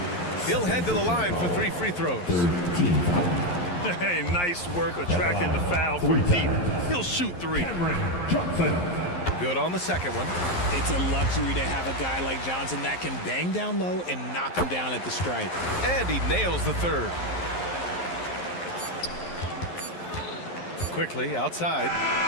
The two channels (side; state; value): right; late; 11 ms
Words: He'll head to the line for 3 free throws. Hey, nice work attracting the foul from deep. He'll shoot 3. Good on the second one. It's a luxury to have a guy like Johnson that can bang down low and knock him down at the stripe. And he nails the third. Quickly outside.